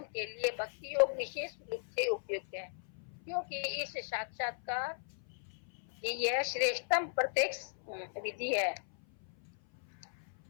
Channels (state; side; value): silent; right; 53 dB below the other